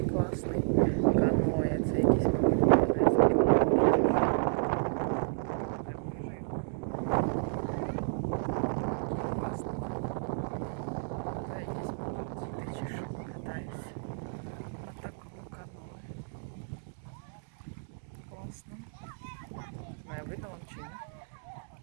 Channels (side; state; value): left; silent; digital silence